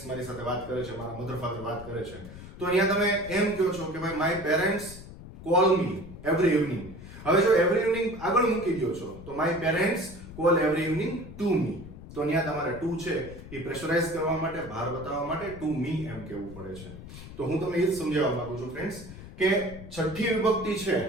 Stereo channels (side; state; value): left; noise; rumble, 14 dB below the sound